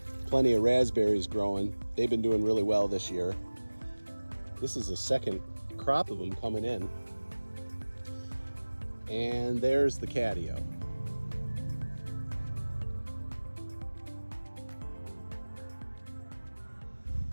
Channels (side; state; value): both; inverted; correlation -1.00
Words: Plenty of raspberries growing. They've been doing really well this year. This is the second crop of them coming in. And there's the Catio.